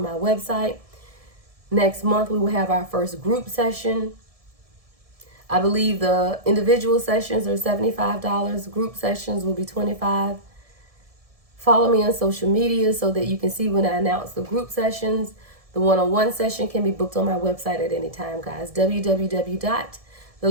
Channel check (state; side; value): late; left; 1.7 ms